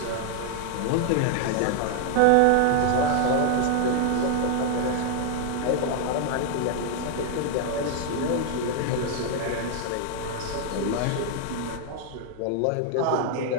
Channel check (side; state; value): both; different; correlation 0.00